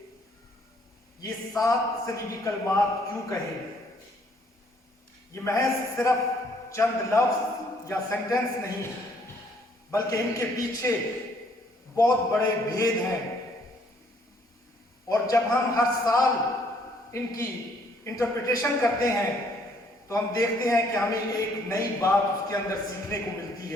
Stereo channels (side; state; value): both; normal; correlation 0.64